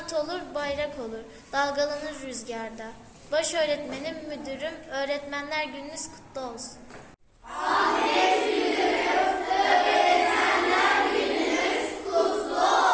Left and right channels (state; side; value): identical; both; correlation 1.00